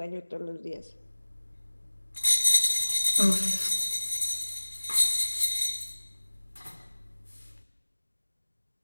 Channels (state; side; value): inverted; both; correlation -1.00